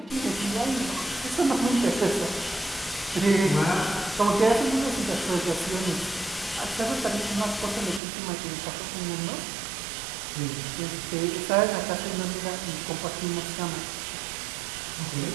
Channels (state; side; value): drops out; left; at 8.0 s